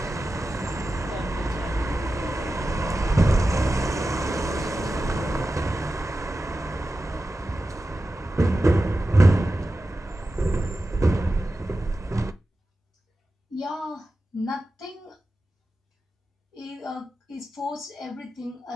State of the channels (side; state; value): both; normal; correlation 0.93